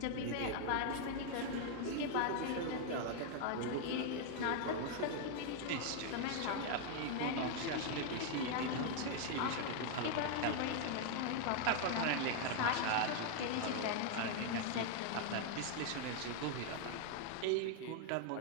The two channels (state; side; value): different; both; correlation 0.00